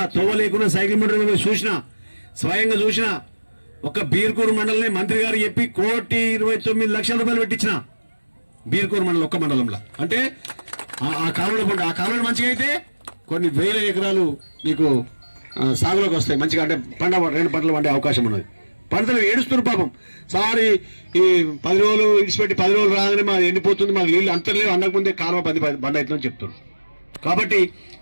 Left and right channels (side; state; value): both; inverted; correlation -1.00